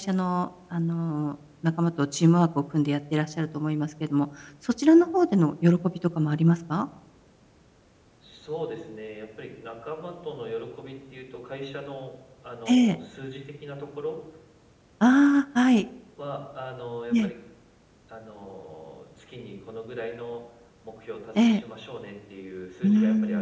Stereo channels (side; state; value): both; identical; correlation 1.00